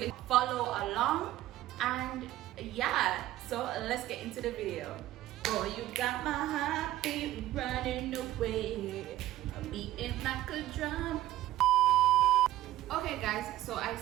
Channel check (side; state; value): left; quieter; 14.8 dB